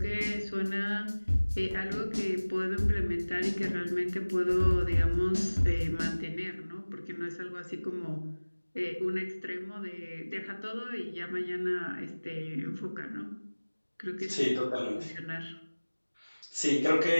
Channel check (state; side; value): inverted; both; correlation -1.00